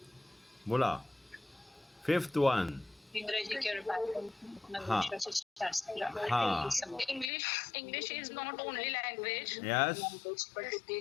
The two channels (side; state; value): right; drops out; at 7.3 s